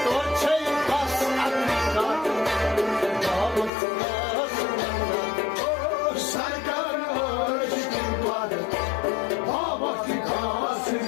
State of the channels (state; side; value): drops out; right; at 3.7 s